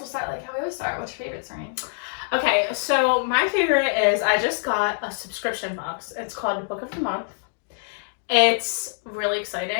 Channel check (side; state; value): right; silent; digital silence